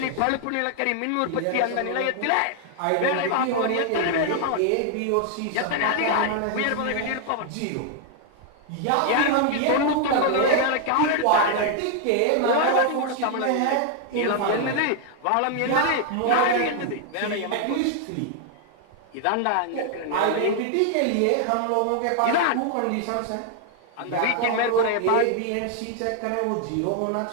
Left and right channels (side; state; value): both; different; correlation 0.00